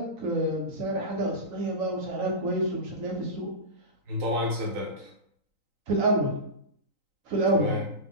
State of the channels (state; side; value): late; left; 3.9 ms